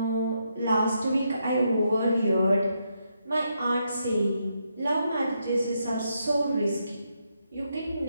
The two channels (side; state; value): both; inverted; correlation -0.80